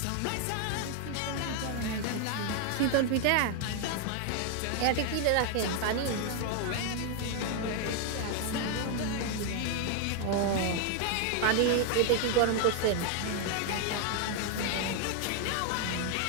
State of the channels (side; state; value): both; different; correlation 0.00